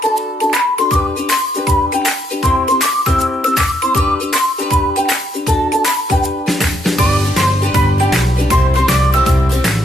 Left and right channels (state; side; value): normal; both; correlation 0.75